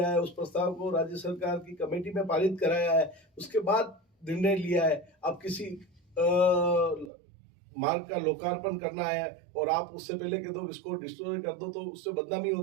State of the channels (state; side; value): drops out; left; at 7.1 s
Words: है, उस प्रस्ताव को राज्य सरकार की कमेटी में पारित कराया है, उसके बाद निर्णय लिया है। अब किसी मार्ग का लोकार्पण करना है और आप उससे पहले कह दो इसको डिस्ट्रॉय कर दो, तो उससे बदनामी